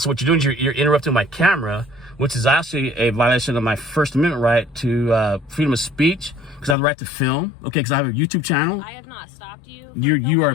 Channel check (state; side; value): drops out; right; at 6.8 s